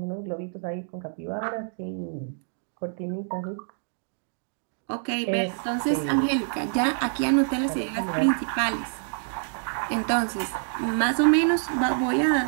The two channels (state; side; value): silent; left; digital silence